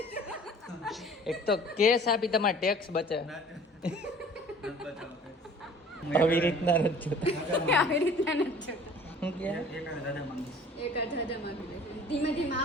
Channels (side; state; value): both; normal; correlation 0.48